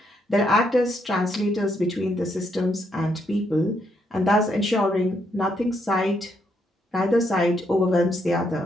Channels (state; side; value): normal; both; correlation 0.76